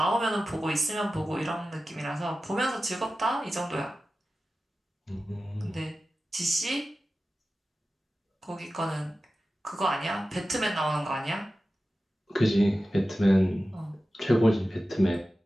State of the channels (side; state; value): both; normal; correlation 0.94